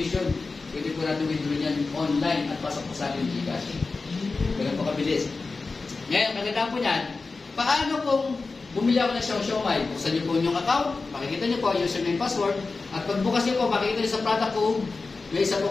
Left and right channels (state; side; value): quieter; right; 4.0 dB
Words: Pwede po natin withdraw niyan online at pasok po sa ating Gcash. Ganun po kabilis. Ngayon, kagandaan po niyan, paano kung bumili ako ng siomay? Buksan niyo po yung account, makikita niyo po yung username password, at pag bukas niyo po, makikita niyo sa product code, may isa po